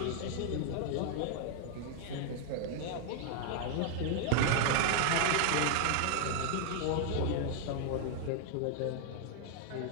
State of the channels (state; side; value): different; both; correlation 0.00